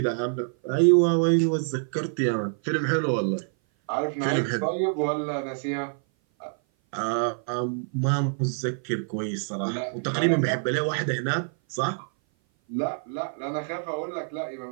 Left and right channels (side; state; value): left; silent; 57 dB below the other